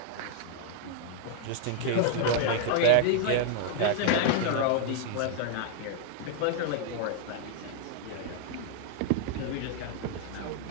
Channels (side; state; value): both; different; correlation 0.00